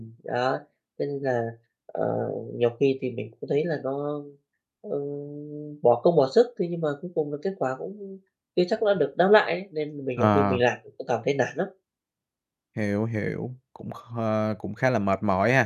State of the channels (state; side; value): identical; both; correlation 1.00